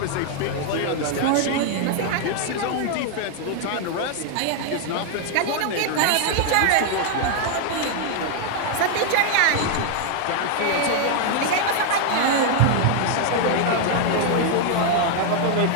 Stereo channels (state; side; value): different; both; correlation 0.00